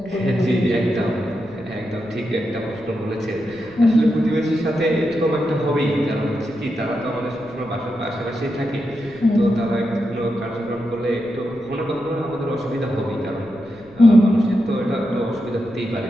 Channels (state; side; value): noise; left; rumble, 24 dB below the sound